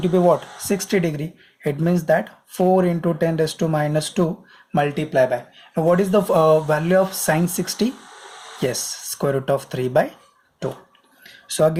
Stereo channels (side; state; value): both; identical; correlation 1.00